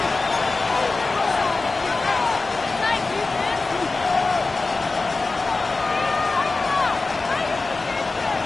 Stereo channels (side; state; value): right; quieter; 3.6 dB